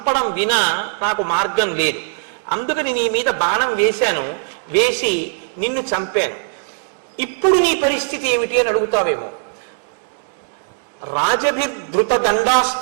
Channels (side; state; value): left; silent; digital silence